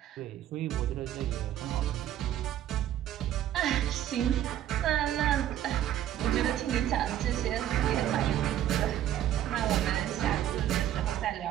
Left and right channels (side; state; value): left; quieter; 11.8 dB